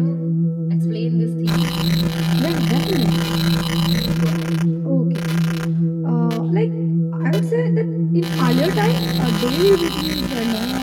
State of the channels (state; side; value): identical; both; correlation 1.00